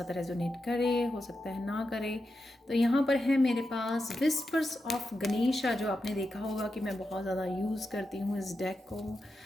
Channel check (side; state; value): both; normal; correlation 0.88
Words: रेजोनेट करे, हो सकता है ना करे। तो यहाँ पर है मेरे पास विस्पर्स ऑफ गणेशा, जो आपने देखा होगा कि मैं बहुत ज़्यादा यूज़ करती हूँ इस डेक को।